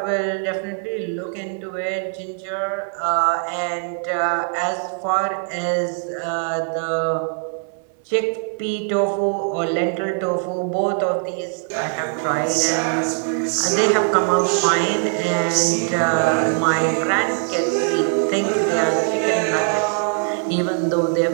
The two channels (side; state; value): left; silent; 60 dB below the other